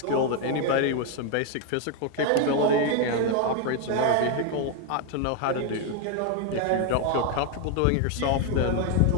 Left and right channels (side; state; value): both; different; correlation 0.01